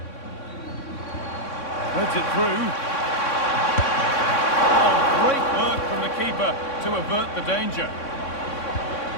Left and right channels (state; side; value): late; right; 3.6 ms